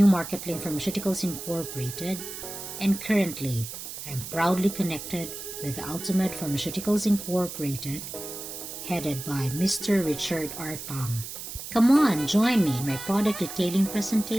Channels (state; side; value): noise; right; hiss, 9 dB below the sound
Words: Market Link Pharmaceuticals Incorporated, and currently, I'm proudly connected with Altomed Pharmaceuticals Incorporated, headed by Mr. Richard R. Tong. Come on, join me in my product detailing